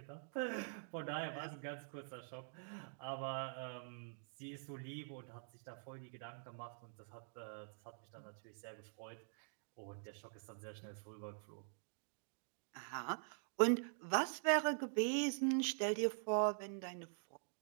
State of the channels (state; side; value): silent; left; digital silence